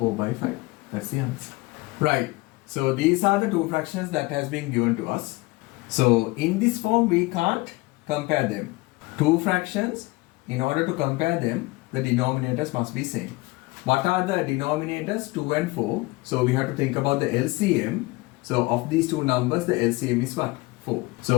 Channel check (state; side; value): quieter; right; 22.7 dB